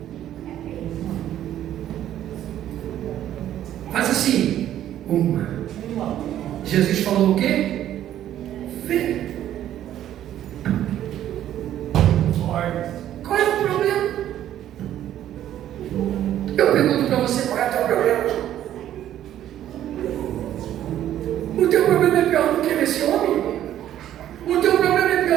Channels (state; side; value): quieter; left; 11.8 dB